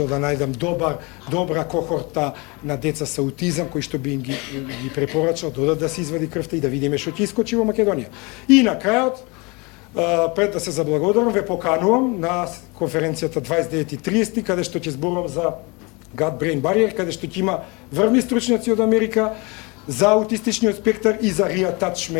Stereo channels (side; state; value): right; quieter; 27.8 dB